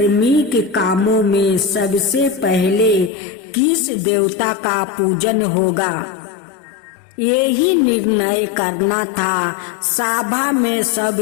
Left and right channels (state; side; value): drops out; right; at 3.1 s